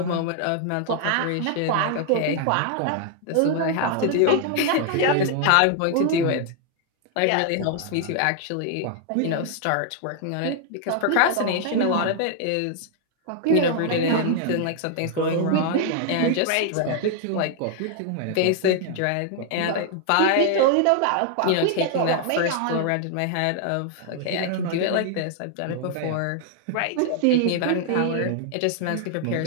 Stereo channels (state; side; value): different; both; correlation 0.00